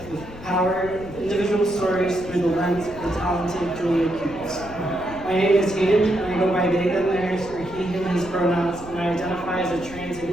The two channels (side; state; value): left; noise; rumble, 16 dB below the sound